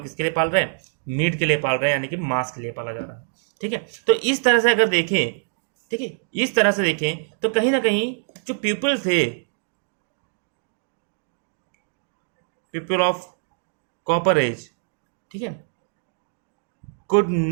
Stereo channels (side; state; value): left; silent; digital silence